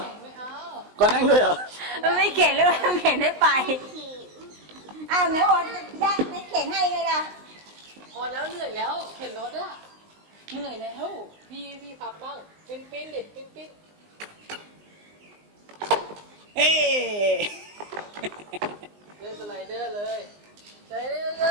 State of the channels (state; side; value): late; left; 19 ms